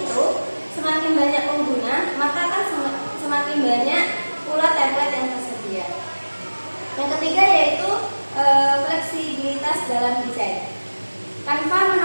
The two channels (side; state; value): both; inverted; correlation -1.00